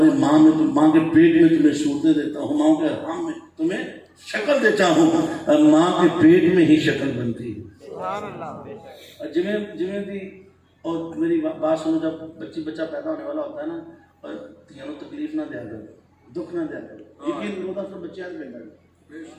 ماں میں ماں کے پیٹ میں تمہیں صورتیں دیتا ہوں ماں کے حرام میں تمہیں شکل دیتا ہوں. ماں کے پیٹ میں ہی شکل بنتی ہے. جویں دی اور میری بات سنو جب بچہ پیدا ہونے والا ہوتا ہے نا اور تینوں تکلیف نہ دیا کرو دکھ نہ دیا کرو. یقین ہوتا تو بچے آج بیٹھا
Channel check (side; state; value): both; identical; correlation 1.00